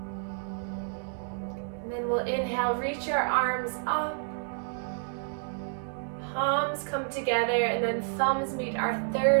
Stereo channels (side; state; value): left; silent; digital silence